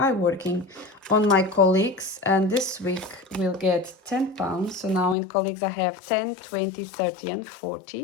working on my colleagues, and this week we'll get £10. So now in colleagues I have 10, 20, 30 and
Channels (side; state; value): right; drops out; at 5.2 s